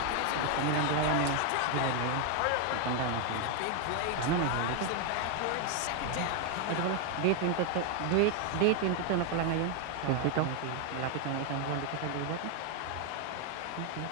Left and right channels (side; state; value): both; different; correlation 0.01